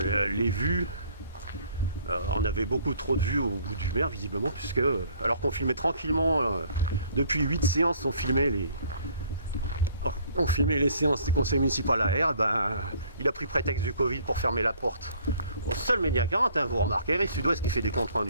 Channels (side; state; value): both; inverted; correlation -0.58